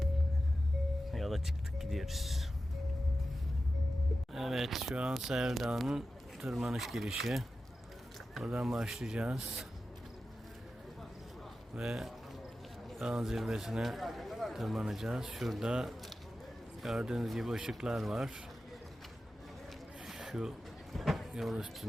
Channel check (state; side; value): normal; both; correlation 0.93